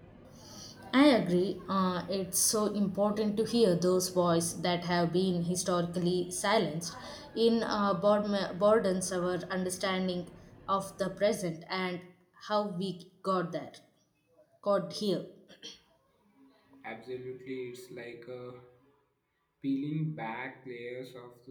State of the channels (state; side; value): identical; both; correlation 1.00